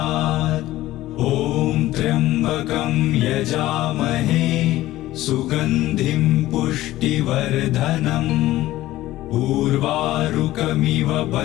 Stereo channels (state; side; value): quieter; right; 15.9 dB